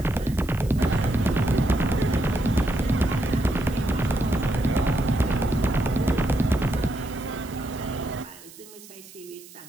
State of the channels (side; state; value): right; noise; hiss, 20 dB below the sound